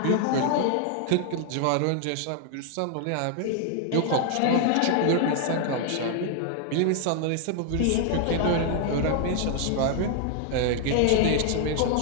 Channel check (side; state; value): both; different; correlation 0.00